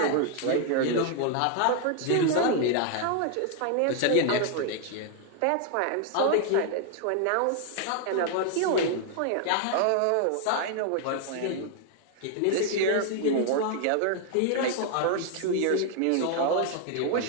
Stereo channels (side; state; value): both; different; correlation 0.00